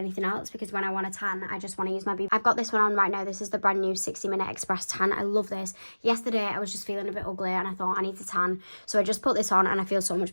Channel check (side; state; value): both; inverted; correlation -1.00